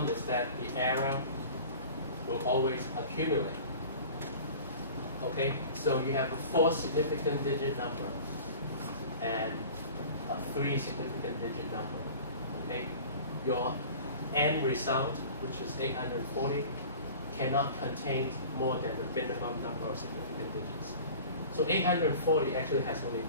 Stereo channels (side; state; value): both; inverted; correlation -0.41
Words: is that the error will always accumulate. Okay, so you have a 4 significant digit number and a 3 significant digit number. Okay, your end result, which is 840, cannot contain more than the minimum number of significant digits. So 840 actually has only